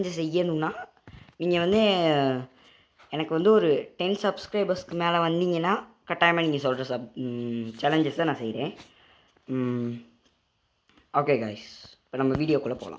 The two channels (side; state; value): both; identical; correlation 1.00